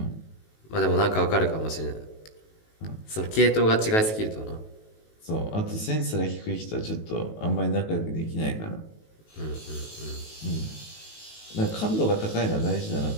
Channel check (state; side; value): late; right; 19 ms